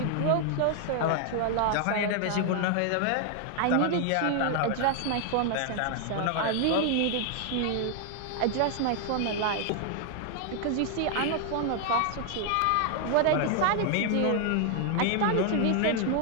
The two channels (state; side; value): different; both; correlation 0.00